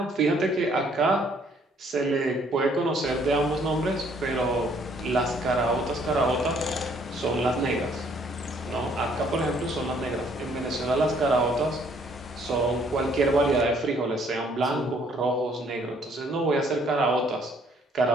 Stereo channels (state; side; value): normal; both; correlation 0.63